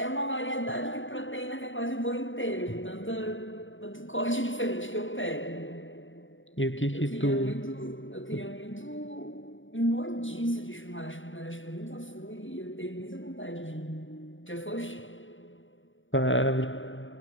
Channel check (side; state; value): right; late; 0.57 ms